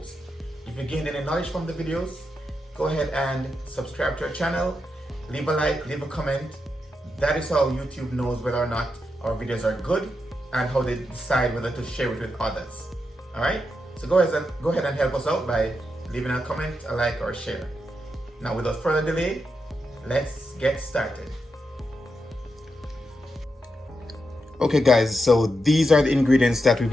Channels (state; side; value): normal; both; correlation 0.85